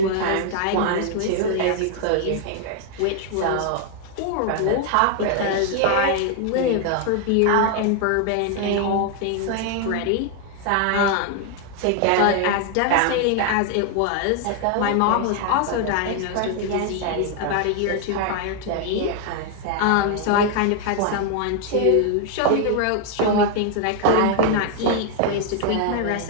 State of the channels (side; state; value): both; different; correlation 0.00